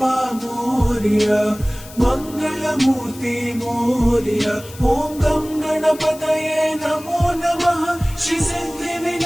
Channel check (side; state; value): left; noise; hiss, 18 dB below the sound